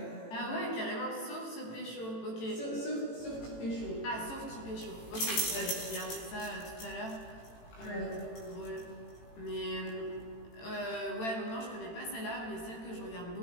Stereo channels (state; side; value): late; right; 18 ms